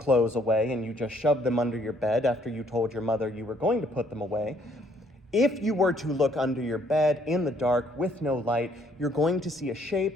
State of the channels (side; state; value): both; normal; correlation 0.66